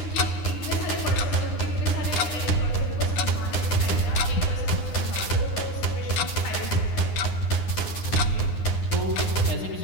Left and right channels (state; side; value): late; right; 9.9 ms